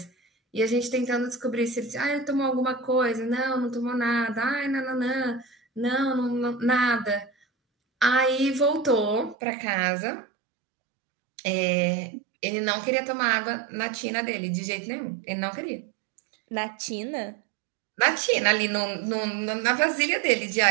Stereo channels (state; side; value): drops out; left; at 9.3 s